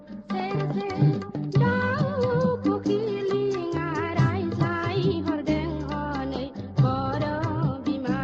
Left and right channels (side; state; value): both; identical; correlation 1.00